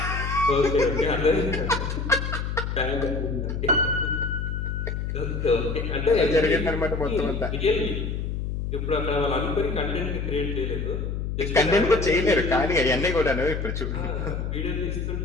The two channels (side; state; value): left; noise; hum, 3 dB below the sound